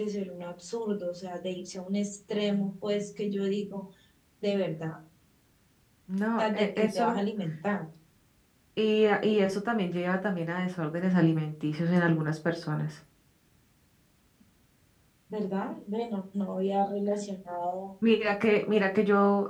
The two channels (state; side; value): identical; both; correlation 1.00